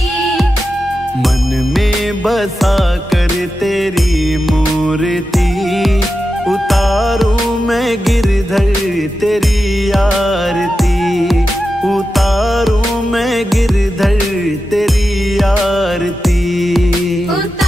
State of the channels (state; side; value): normal; both; correlation 0.91